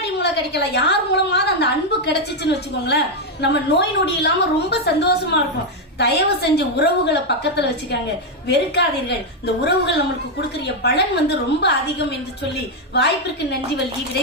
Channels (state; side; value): normal; both; correlation 0.02